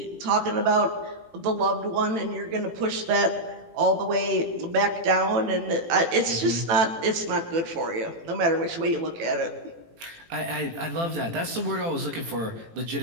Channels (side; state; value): left; late; 18 ms